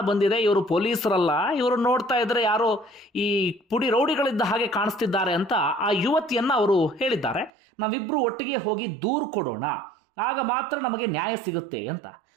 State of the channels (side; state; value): left; drops out; at 7.5 s